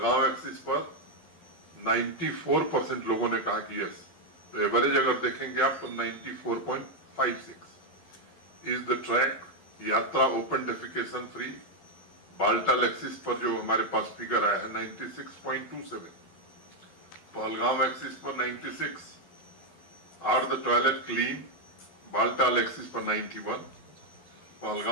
एक्सिस पर 94% लोगों ने कहा कि यस। तो एवरेज अगर देखेंगे आप तो 94.56। इज द ट्रैक यात्रा open defecation free? Baltal axis पर जो हमारे पास फिगर आया है 96.27, पहलगांव एक्सिस पर 96। Are the toilet clean? Baltal axis पर 91,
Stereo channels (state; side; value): late; right; 12 ms